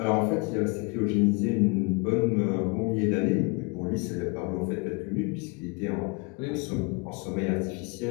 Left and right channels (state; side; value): quieter; right; 30.8 dB